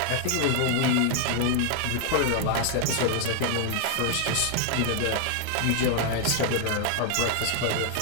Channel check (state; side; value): different; both; correlation 0.00